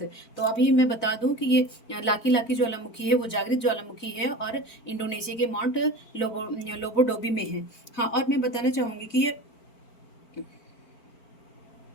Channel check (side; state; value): right; late; 4.5 ms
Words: तो अभी मैं बता दूं कि ये लाकी लाकी ज्वालामुखी है, वो जागृत ज्वालामुखी है और इंडोनेशिया के माउंट लोबोडोबी में है। हाँ, और मैं बताना चाहूंगी कि ये